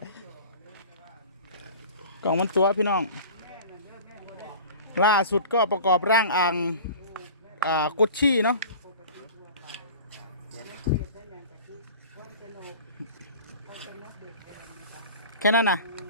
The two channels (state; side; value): inverted; both; correlation -0.40